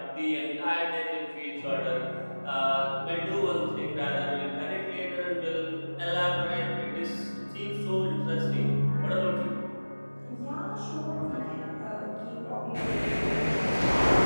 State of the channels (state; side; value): inverted; both; correlation -1.00